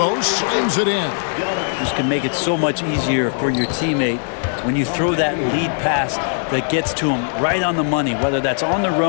slams it in. This can make it so much easier for your teammate when you throw that lead pass that gets to him right on the money, whether that's on the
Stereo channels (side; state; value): right; silent; digital silence